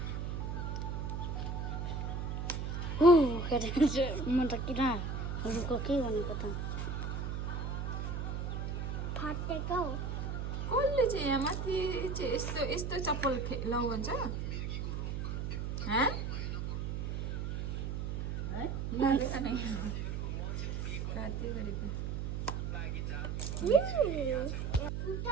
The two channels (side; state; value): right; noise; hum, 2 dB below the sound